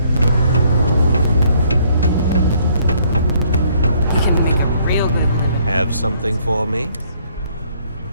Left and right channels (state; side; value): inverted; both; correlation -0.65